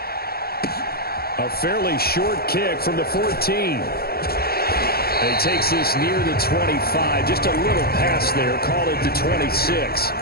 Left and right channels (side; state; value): right; late; 0.45 ms